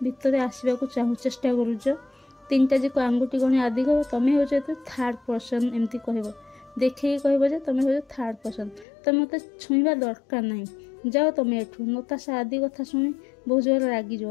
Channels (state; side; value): drops out; right; at 8.8 s